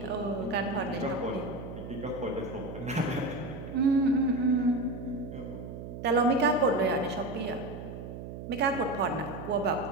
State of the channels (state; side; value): noise; right; hum, 9 dB below the sound